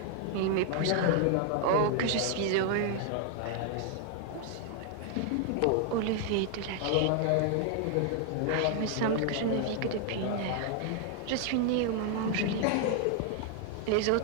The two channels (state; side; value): different; both; correlation 0.00